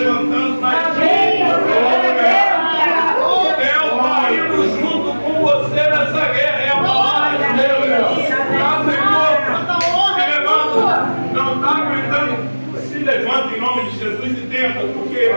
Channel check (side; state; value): both; inverted; correlation -1.00